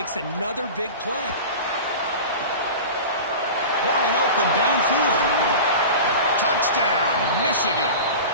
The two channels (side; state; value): both; inverted; correlation -0.32